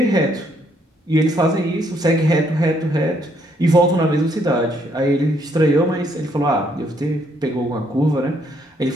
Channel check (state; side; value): normal; both; correlation 0.70